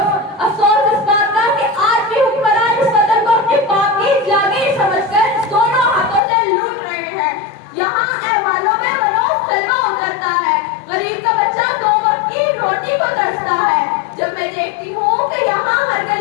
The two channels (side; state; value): right; drops out; at 6.2 s